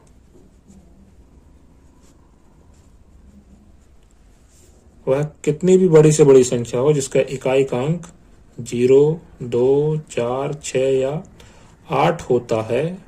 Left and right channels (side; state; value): both; identical; correlation 1.00